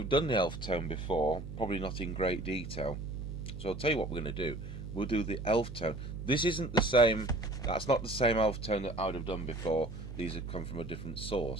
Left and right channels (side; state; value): right; noise; hum, 7 dB below the sound